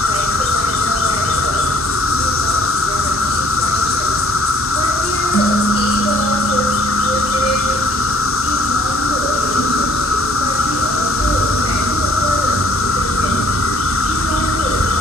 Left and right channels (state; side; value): normal; both; correlation 0.60